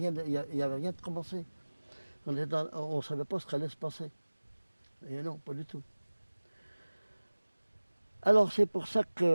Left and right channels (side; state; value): both; inverted; correlation -1.00